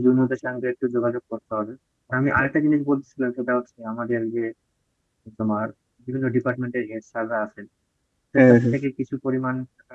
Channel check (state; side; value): identical; both; correlation 1.00